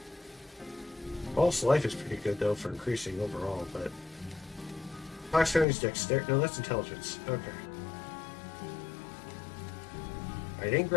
False life is pretty good though for increasing overall, but Fox dexterity. No, that's intelligence. Okay. I didn't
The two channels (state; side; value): drops out; right; at 5.7 s